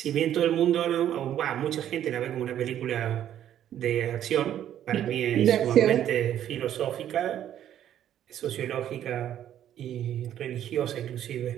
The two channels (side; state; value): left; quieter; 10.9 dB